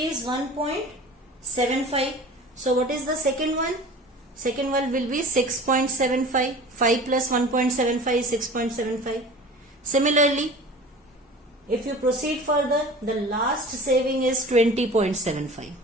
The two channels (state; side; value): normal; both; correlation 0.40